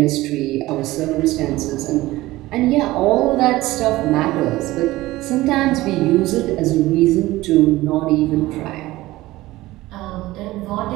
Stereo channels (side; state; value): left; quieter; 17.9 dB